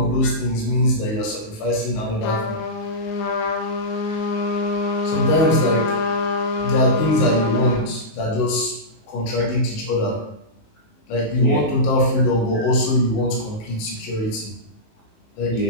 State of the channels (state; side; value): late; right; 19 ms